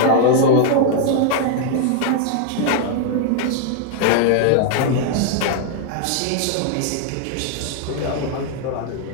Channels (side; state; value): both; different; correlation 0.00